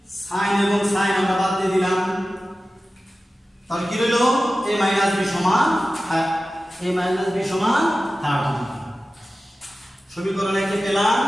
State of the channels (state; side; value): normal; both; correlation 0.95